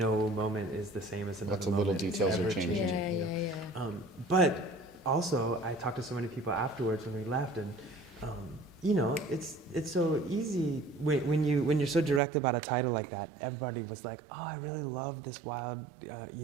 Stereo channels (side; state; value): left; drops out; at 12.2 s